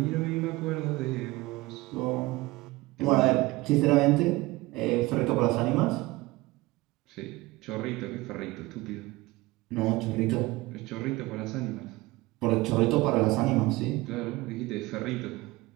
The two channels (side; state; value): left; quieter; 20.6 dB